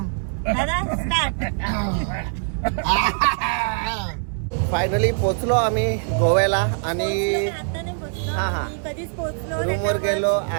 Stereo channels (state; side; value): silent; left; digital silence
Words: दादा स्टार्ट. फायनली पोचलो आम्ही गोव्याला आणि आता नाही पोहोचलो, हा. आम्ही कधीच पोहोचलो. रूमवर गेलो,